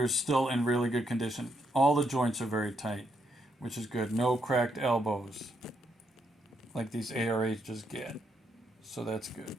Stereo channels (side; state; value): both; normal; correlation 0.77